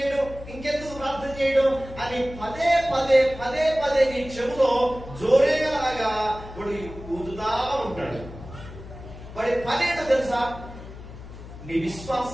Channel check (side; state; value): left; noise; hum, 14 dB below the sound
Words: అని పదే నీ చెవులో జోరేలాగా వాడు ఊదుతా ఉంటాడు. వాడి పనేటో తెలుసా? నీ